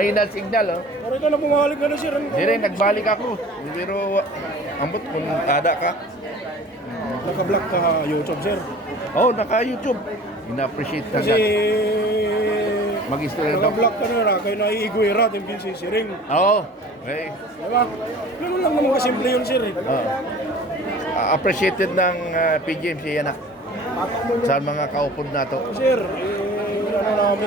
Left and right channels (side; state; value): both; normal; correlation 0.45